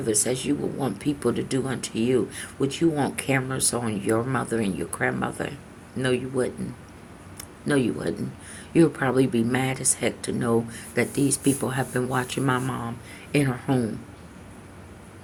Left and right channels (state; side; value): identical; both; correlation 1.00